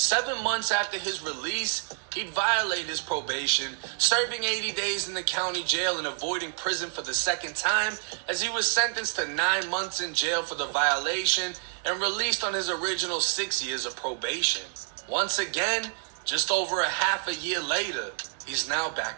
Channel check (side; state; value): left; silent; 59 dB below the other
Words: months after his release, he'd violate his probation, serving 80 days in the county jail and avoiding prison for the second time, as he was sentenced to 9 months in jail for the violation and released on his original 6 years of probation. Once again, just over a half a year later, he's now